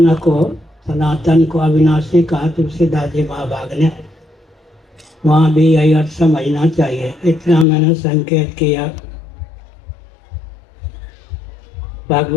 को अविनाशी कहा तुलसीदास जी महाभाग ने। वहाँ भी यही अर्थ समझना चाहिए। इतना मैंने संकेत किया।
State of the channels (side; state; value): right; drops out; at 7.7 s